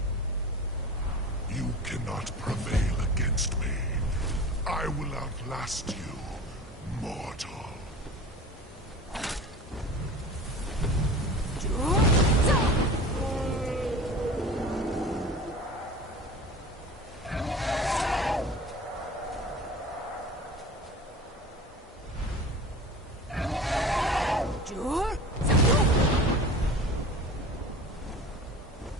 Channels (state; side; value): normal; both; correlation 0.37